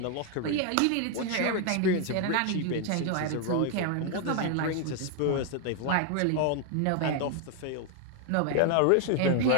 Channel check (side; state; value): both; different; correlation 0.00